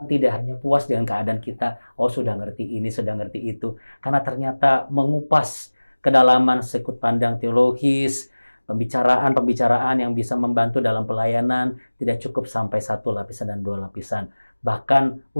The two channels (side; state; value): both; inverted; correlation -1.00